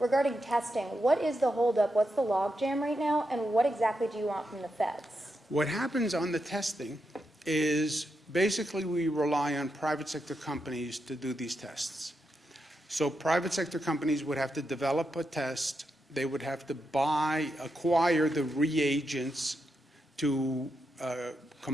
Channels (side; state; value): both; normal; correlation 0.85